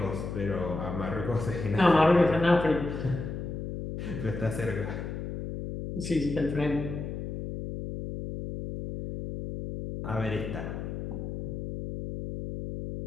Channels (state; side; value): noise; left; hum, 6 dB below the sound